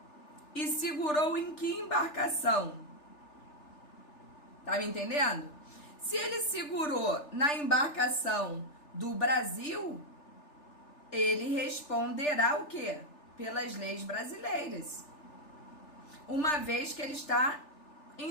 E segurou em que embarcação? Tá me entendendo? Se ele segurou na embarcação do Brasil, ele responderá o quê? Pelas leis brasileiras. Uma vez que ele está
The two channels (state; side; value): late; right; 3.4 ms